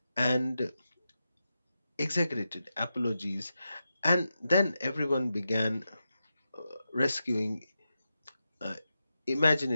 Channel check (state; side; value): inverted; both; correlation -0.89